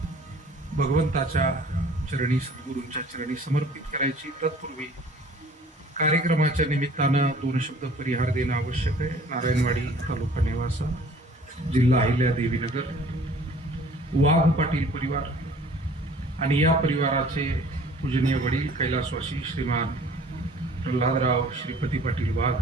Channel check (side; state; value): both; normal; correlation 0.51